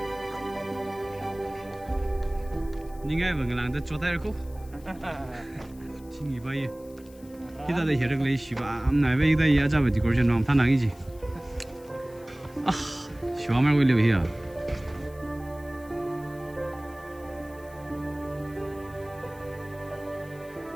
Những cái mà người làm được cho tay được không? Chính vì vậy. Khi ta để hiểu được lấy xí ba, hôm nay bây giờ giờ ra về thì có chuyện làm thằng nào cái gì? 시와 말고 일려 해야.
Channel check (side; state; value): left; noise; hiss, 25 dB below the sound